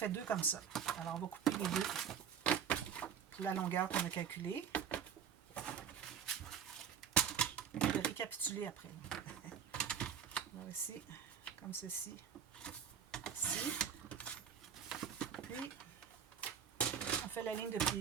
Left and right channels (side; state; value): left; quieter; 7.8 dB